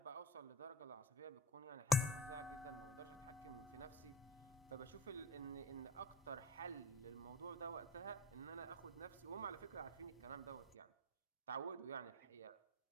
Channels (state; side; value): normal; both; correlation 0.36